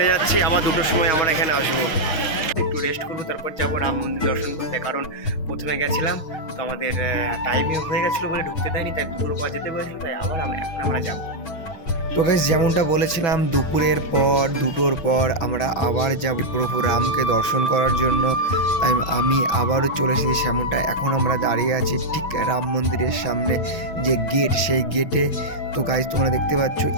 যাচ্ছি, আবার 2টোর সময় আমরা এখানে আসবো। একটু রেস্ট করবো, তারপর যাবো রাম মন্দির দর্শন করতে। কারণ প্রথমে গেছিলাম তো আমাদের টাইমে হয়ে গেছিলো বলে ঢুকতে দেয়নি, তাই দুপুর পর যেতে বলেছিল, তাই আবার এখন আমরা যাবো। তো গাইস যেমনটা বলেছিলাম দুপুরের পর 2টোর পর আমরা আবার যাব প্রভু রামকে দর্শন করার জন্য। তাই আমি আবারও চলে এসেছি সেমনটা। এখন আমরা দাঁড়িয়ে আছি ঠিক রাম মন্দিরের সামনে যে গেট, সেই গেটে। তো গাইস তোমরা দেখতে পাচ্ছ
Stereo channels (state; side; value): late; right; 6.3 ms